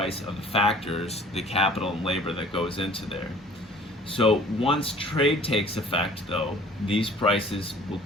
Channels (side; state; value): both; normal; correlation 0.51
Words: of the factors, the capital and labor that goes into there. So once trade takes effect, though, these prices will